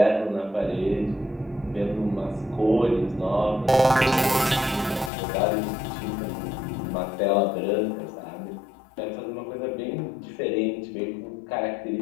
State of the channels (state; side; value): drops out; right; at 5.1 s